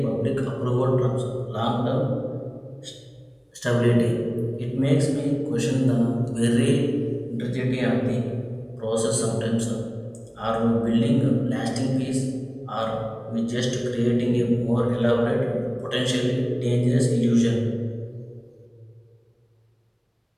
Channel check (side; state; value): both; identical; correlation 1.00